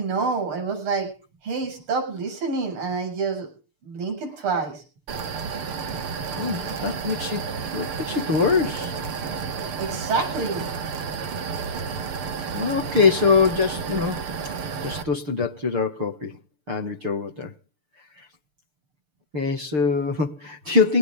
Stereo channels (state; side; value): late; left; 6.7 ms